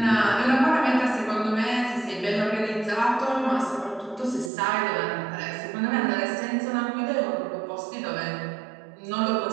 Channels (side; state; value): left; drops out; at 4.5 s